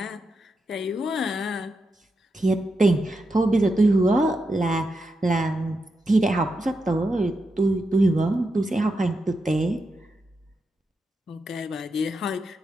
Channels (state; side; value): normal; both; correlation 0.86